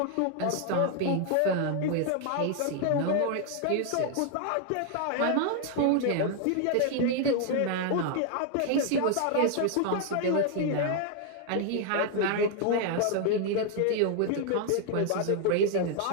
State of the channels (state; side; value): different; both; correlation 0.00